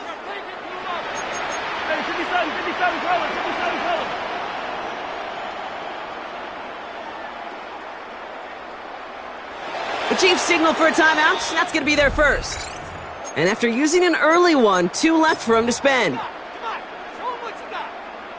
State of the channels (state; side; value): identical; both; correlation 1.00